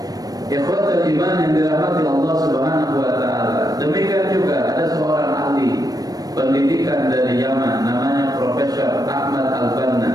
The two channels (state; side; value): late; left; 0.18 ms